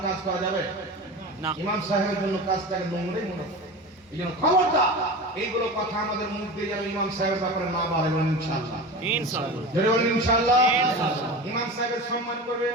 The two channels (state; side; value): normal; both; correlation 0.30